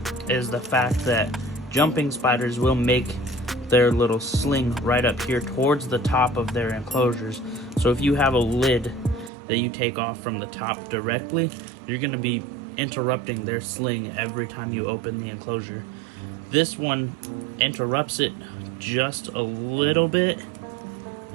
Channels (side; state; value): left; drops out; at 9.3 s